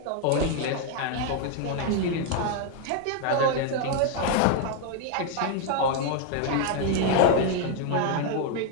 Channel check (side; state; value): both; different; correlation 0.00